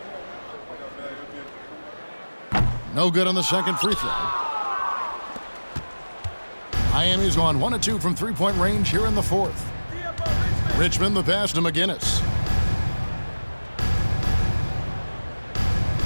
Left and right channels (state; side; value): inverted; both; correlation -1.00